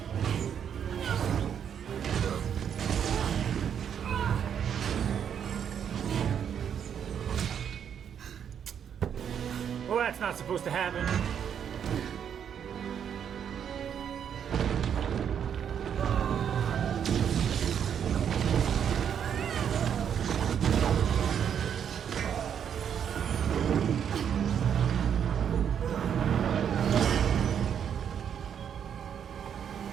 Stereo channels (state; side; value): quieter; left; 8.4 dB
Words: Well, that's not supposed to happen.